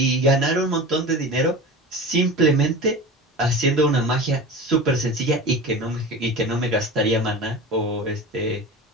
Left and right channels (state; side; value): normal; both; correlation 0.32